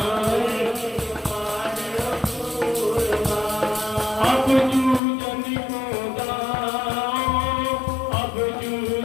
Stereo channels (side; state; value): right; drops out; at 5.0 s